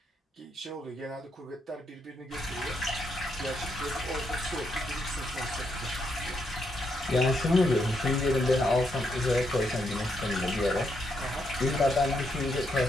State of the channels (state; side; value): normal; both; correlation 0.78